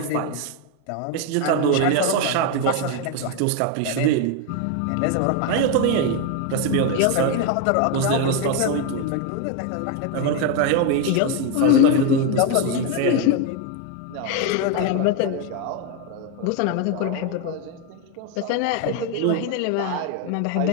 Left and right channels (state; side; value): different; both; correlation 0.02